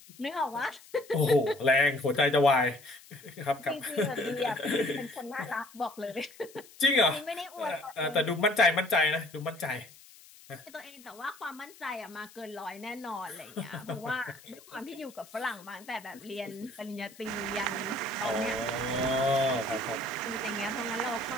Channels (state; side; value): noise; left; hiss, 22 dB below the sound